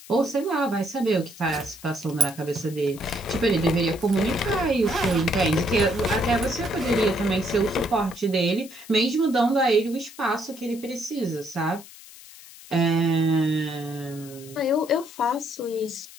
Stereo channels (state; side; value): noise; left; hiss, 19 dB below the sound